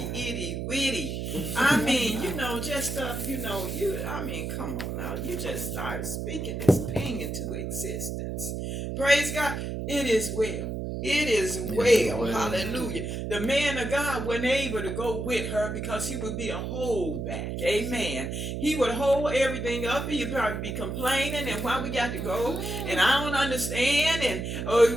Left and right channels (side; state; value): right; noise; hum, 4 dB below the sound